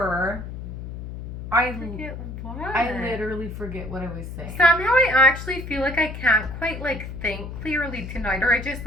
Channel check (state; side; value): noise; left; hum, 9 dB below the sound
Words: I Forget what? I literally forget what I was saying. Somehow I actually feel like I can't quite like think clearly tonight, or I just